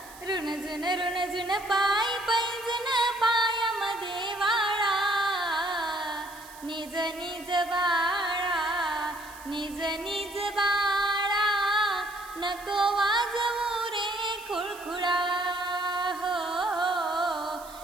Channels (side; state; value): right; noise; hiss, 19 dB below the sound